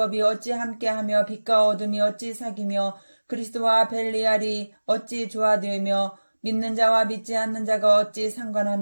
어찌 함께하며 빛과 어둠이 어찌 사귀며 그리스도와 벨리알이 어찌 조화되며 믿는 자와 믿지 않는 자가 어찌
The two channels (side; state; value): both; inverted; correlation -1.00